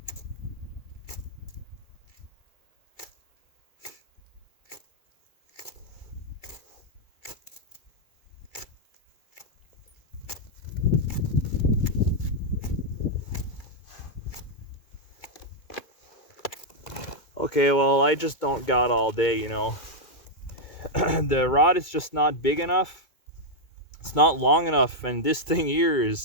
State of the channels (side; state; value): right; late; 2.3 ms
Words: Okay, well, I just don't got all day, you know. The rod is just not big enough. It's not long enough, and this thing here